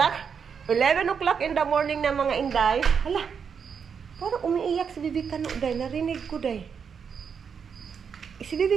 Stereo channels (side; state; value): left; quieter; 6.7 dB